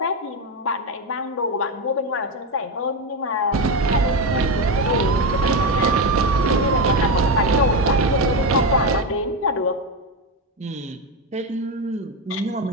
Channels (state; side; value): normal; both; correlation 0.11